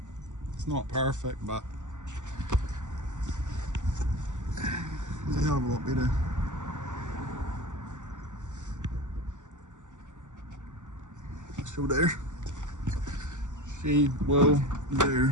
It's not perfect, but it's a hell of a lot better. Still there. She will do.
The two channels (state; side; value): late; left; 0.85 ms